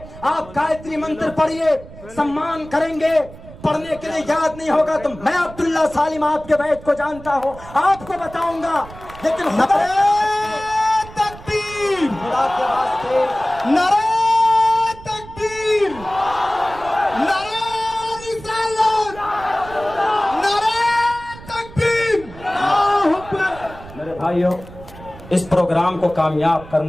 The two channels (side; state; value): right; noise; rumble, 17 dB below the sound